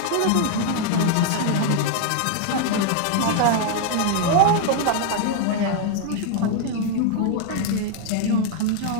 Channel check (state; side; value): different; both; correlation 0.00